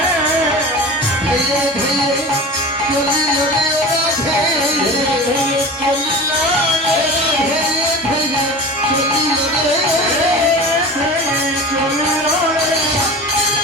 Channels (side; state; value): both; normal; correlation 0.34